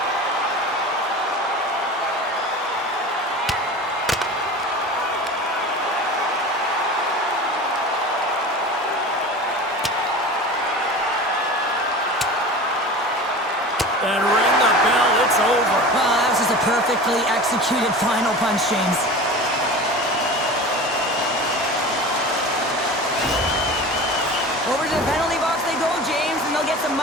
And ring the bell, it's over. That was just a perfectly executed final punch, James. Over to the penalty box they go, James, and they'll get some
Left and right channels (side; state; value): both; normal; correlation 0.34